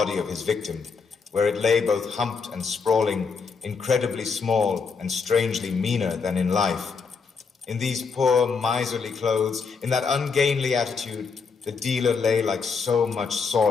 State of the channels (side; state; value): right; quieter; 5.2 dB